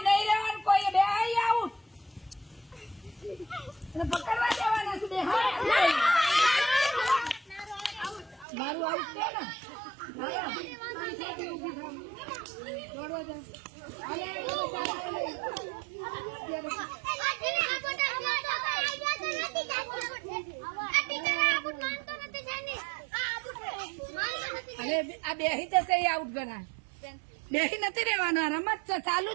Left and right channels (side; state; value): left; drops out; at 8.5 s